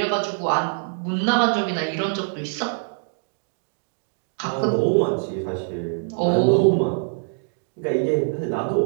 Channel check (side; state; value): left; silent; digital silence